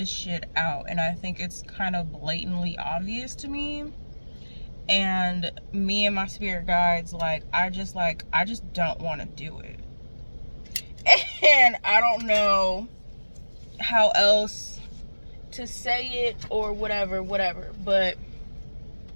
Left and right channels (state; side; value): inverted; both; correlation -1.00